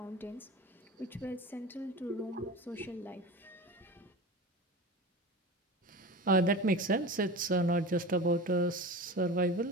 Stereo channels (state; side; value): normal; both; correlation 0.32